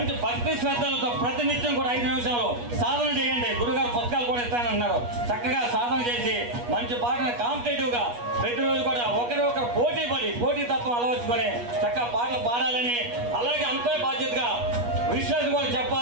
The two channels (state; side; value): late; left; 8.3 ms